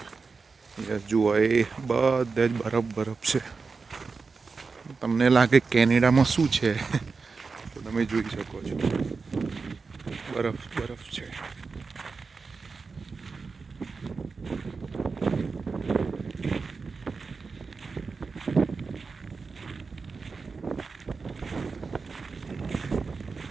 યસ, જુઓ એ બધે જ બરફ છે. તમને લાગે કેનેડામાં શું છે તો તમે જોઈ શકો છો, બરફ છે.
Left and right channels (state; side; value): quieter; left; 4.6 dB